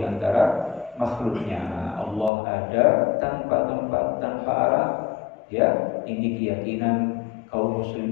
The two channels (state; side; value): drops out; right; at 2.3 s